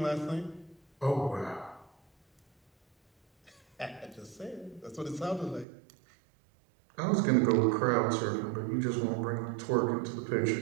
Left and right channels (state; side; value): drops out; left; at 5.7 s